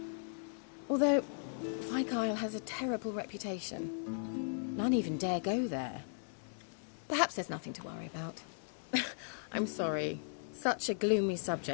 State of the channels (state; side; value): silent; right; digital silence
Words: Although, Fyke Isle has a terrible reputation. None even dare go there. Perhaps there's nothing to worry about. I'm sorry. Such a gloomy